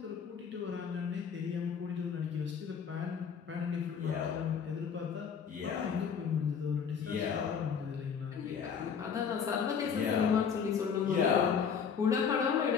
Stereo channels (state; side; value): quieter; right; 6.8 dB